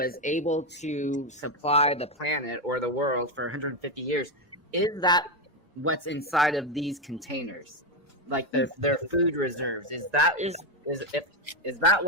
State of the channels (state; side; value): normal; both; correlation 0.08